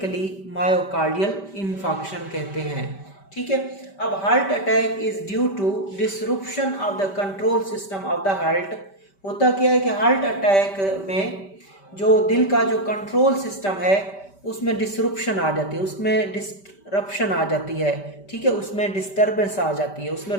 मायोकार्डियल इन्फाक्शन कहते हैं। ठीक है, अब heart attack is due to disruption of the control system of the heart. होता क्या है कि हार्ट अटैक में जो दिल का जो कंट्रोल सिस्टम है उसमें डिसरप्शन आ जाती है, उसमें डिस्टरप्शन आ जाती है। ठीक है, उसमें डिस्टर्बेंस आ जाती है, उसमें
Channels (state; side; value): late; right; 5.1 ms